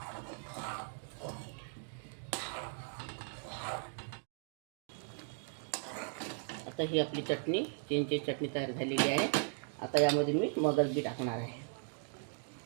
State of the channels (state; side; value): silent; left; 53 dB below the other